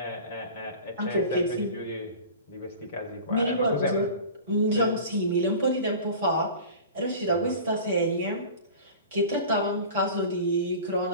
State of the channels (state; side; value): inverted; both; correlation -0.38